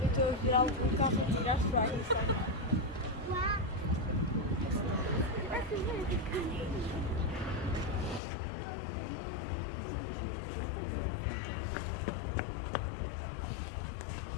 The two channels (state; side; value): drops out; right; at 8.2 s